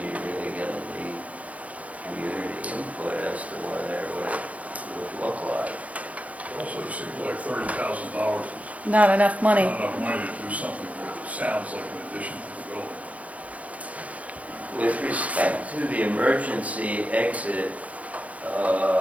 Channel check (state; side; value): late; left; 0.068 ms